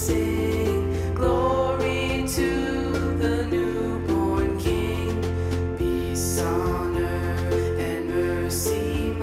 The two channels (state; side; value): identical; both; correlation 1.00